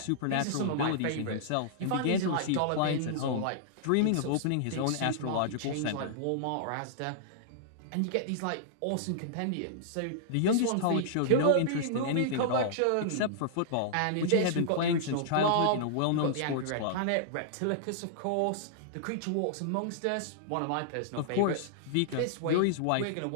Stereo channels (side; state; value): both; different; correlation -0.01